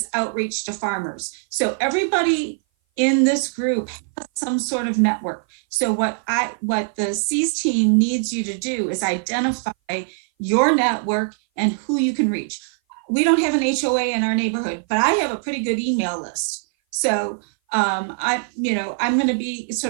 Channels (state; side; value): silent; left; 58 dB below the other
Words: outreach to farmers. So everybody in this group has some sort of network. So what the C's team needs you to do is identify your network and who you can reach. We don't have an HOA in our neighborhood, but I have a pretty good email list. So I'm going to be